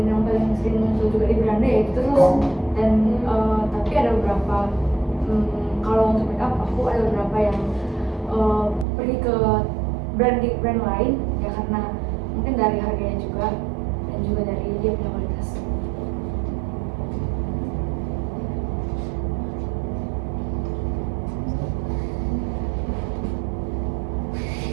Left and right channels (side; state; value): left; drops out; at 8.8 s